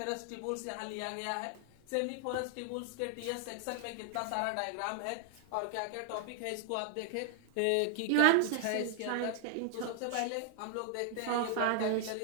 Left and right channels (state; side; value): different; both; correlation 0.00